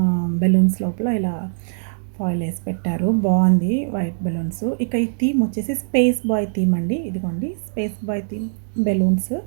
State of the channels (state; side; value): silent; left; digital silence